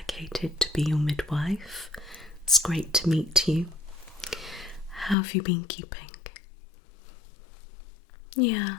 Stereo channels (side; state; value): right; drops out; at 5.2 s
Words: to be your midwife. It's great to meet you. How have you been keeping? Yeah.